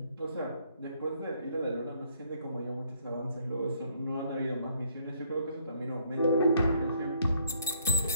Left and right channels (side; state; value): both; inverted; correlation -0.66